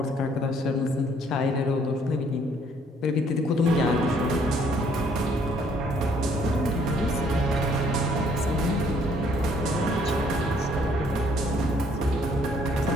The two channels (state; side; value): normal; both; correlation 0.64